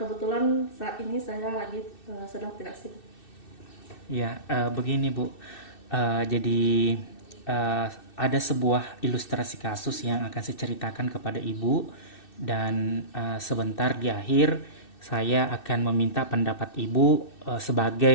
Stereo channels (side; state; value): right; late; 2.6 ms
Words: saat ini saya lagi sedang tidak sibuk. Ya, begini Bu. Jadi ada sebuah ilustrasi kasus yang akan saya ceritakan kepada Ibu dan sebentar di akhir saya akan meminta pendapat Ibu